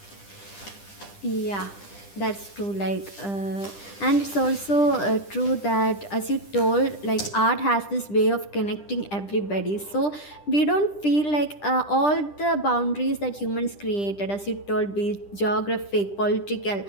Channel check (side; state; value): right; late; 10 ms